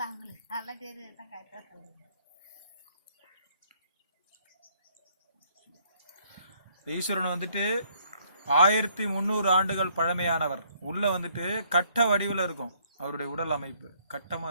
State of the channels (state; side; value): inverted; both; correlation -0.66